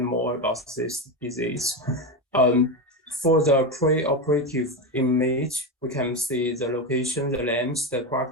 more about this disease. For the pre-operative image, we can see the location, the length, the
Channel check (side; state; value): both; normal; correlation 0.14